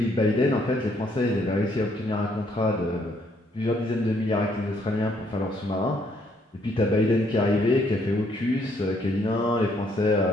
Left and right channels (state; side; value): normal; both; correlation 0.69